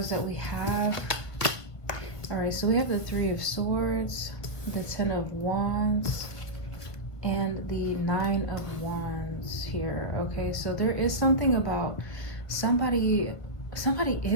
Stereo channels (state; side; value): late; right; 1.5 ms